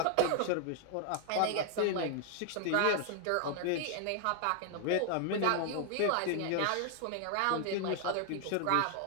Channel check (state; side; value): different; both; correlation 0.00